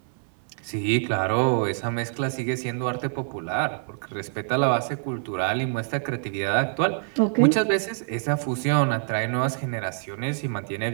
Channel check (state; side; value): silent; left; 61 dB below the other